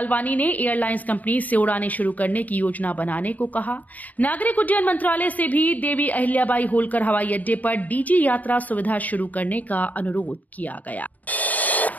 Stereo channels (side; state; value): right; late; 0.076 ms